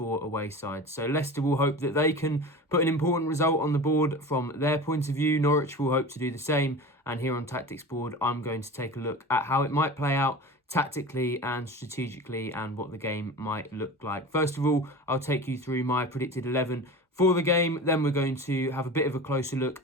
away sides. So Leicester will hope that they can put an important result on the board from their point of view. Norwich will hope to do the same, and here on Tactics Board I'm going to take a look at how it might play out tactically and strategically and what the game might look like. First of all, I'll take you through my predicted 11 for the game. Then we're going to have a bit of a closer look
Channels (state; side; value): normal; both; correlation 0.33